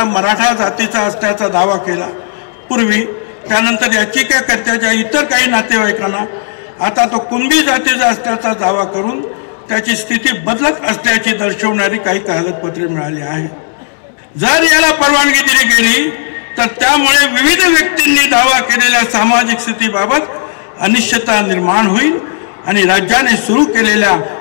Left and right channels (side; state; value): right; silent; digital silence